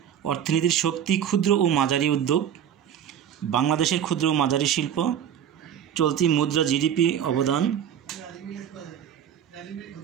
অর্থনীতির শক্তি ক্ষুদ্র ও মাঝারি উদ্যোগ, বাংলাদেশের ক্ষুদ্র ও মাঝারি শিল্প, চলতি মুদ্রা জিডিপি অবদান।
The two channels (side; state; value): left; quieter; 9.3 dB